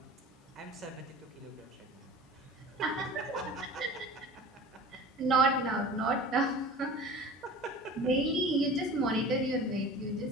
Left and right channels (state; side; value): normal; both; correlation 0.39